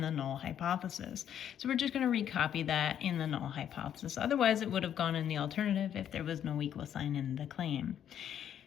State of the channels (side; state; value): right; quieter; 9.7 dB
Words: the null hypothesis. So we're just going to recopy that in the null hypothesis. Otherwise, it would have gone in the alternative if there was no equal sign in the claim.